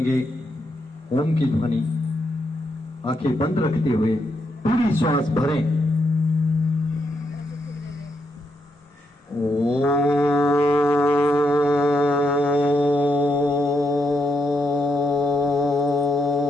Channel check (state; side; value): normal; both; correlation 0.80